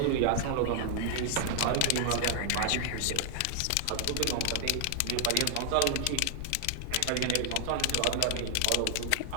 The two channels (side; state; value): both; different; correlation 0.00